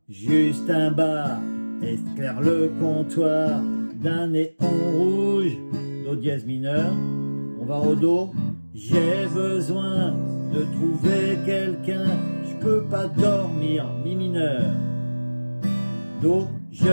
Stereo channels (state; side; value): inverted; both; correlation -1.00